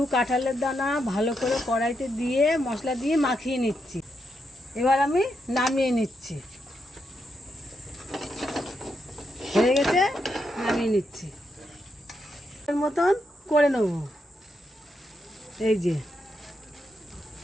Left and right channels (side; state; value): both; normal; correlation 0.82